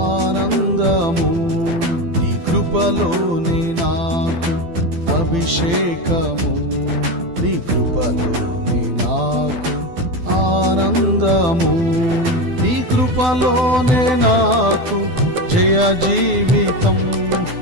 నీ కృపలోనే నాకు అభిషేకము, నీ కృపలోనే నాకు ఆనందము, నీ కృపలోనే నాకు జయ జీవితం,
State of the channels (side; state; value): left; late; 12 ms